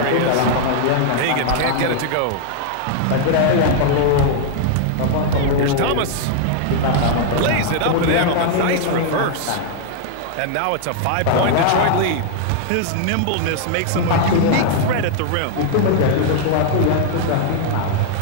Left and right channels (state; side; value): different; both; correlation 0.00